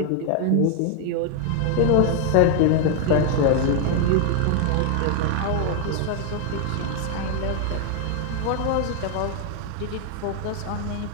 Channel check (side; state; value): both; different; correlation 0.01